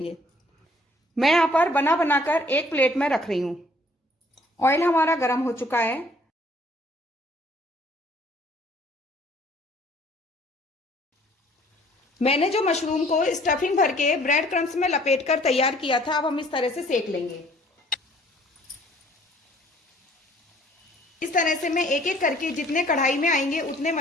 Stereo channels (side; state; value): both; normal; correlation 0.58